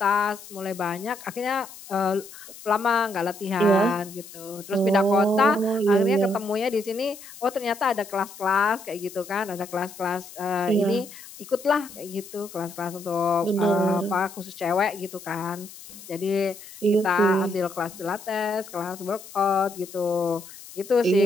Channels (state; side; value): noise; left; hiss, 17 dB below the sound